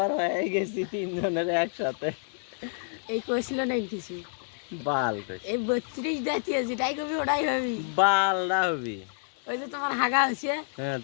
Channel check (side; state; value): right; silent; digital silence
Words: হয়ে গেছি তিনজনের একসাথে। এই কইছিল না কিছু বাল কইছি এই 32 দাঁতিয়ে যেটাই কবি ওটাই হবি। বাল না হবি। ওই যে তোমার হাগা হয়েছে হ্যাঁ